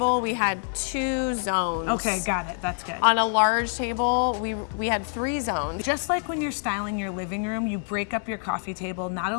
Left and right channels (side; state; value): right; silent; 61 dB below the other